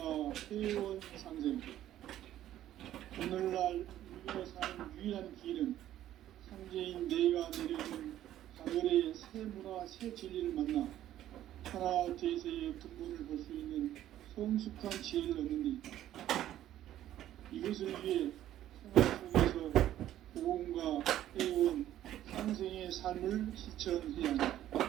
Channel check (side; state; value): left; quieter; 12.5 dB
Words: 회원 상생. 오늘날 인류가 사는 유일한 길은 상제인 내가 내려준 가을의 새 문화, 새 진리를 만나 천하 대세의 근본을 볼 수 있는 성숙한 지혜를 얻는 데 있다. 이것을 위해 생활 속에서 고온과 해온 상생의 삶을 실천해야 한다.